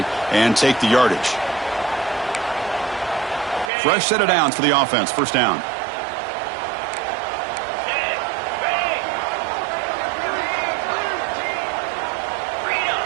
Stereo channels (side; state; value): left; drops out; at 3.7 s